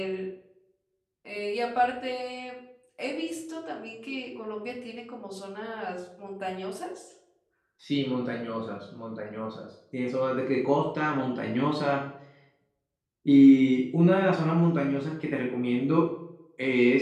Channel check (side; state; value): both; identical; correlation 1.00